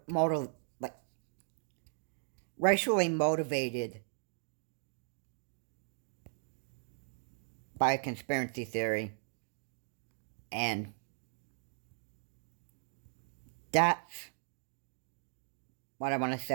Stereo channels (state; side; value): silent; left; digital silence